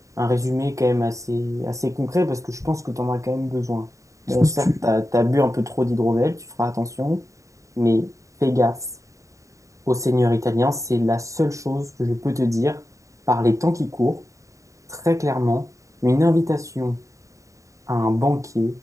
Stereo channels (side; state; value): left; late; 0.16 ms